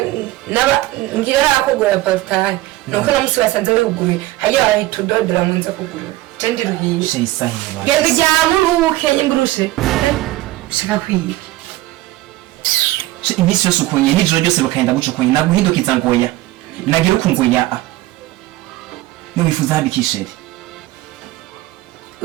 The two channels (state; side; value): quieter; left; 17.3 dB